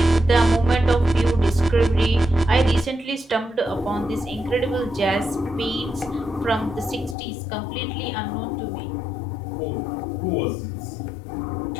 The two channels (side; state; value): right; drops out; at 7.2 s